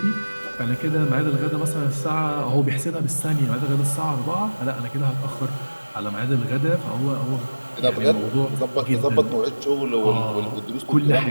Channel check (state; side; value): inverted; both; correlation -1.00